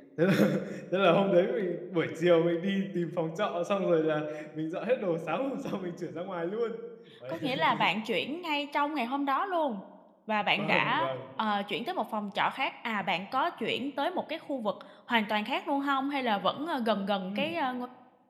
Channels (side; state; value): both; identical; correlation 1.00